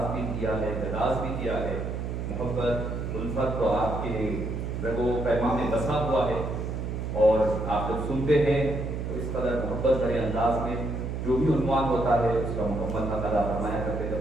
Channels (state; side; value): noise; right; hum, 4 dB below the sound